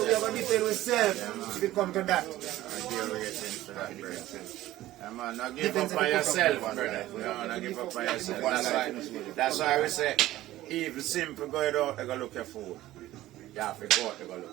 we have to defend ourselves if it come to that. I deal with it for that, brother. Yeah, man, not give up on yourself, brother. No, not give up on yourself. That's why we say, even simple go out, you go look your food. You have to go out, you go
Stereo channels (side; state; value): left; quieter; 15.5 dB